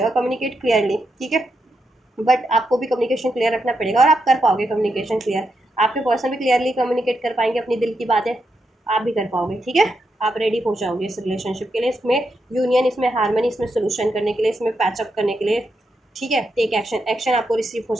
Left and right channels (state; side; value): normal; both; correlation 0.83